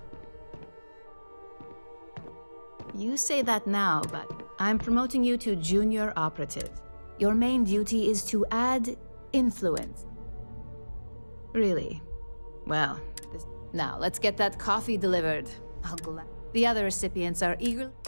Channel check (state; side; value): inverted; both; correlation -1.00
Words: You say that now, but I'm promoting you to junior operative. Your main duty is to add influence. Really? Well, now let's get that coffee delivered. The other recipients are eager.